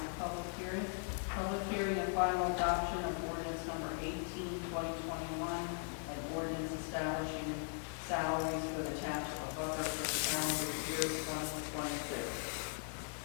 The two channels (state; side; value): silent; right; 52 dB below the other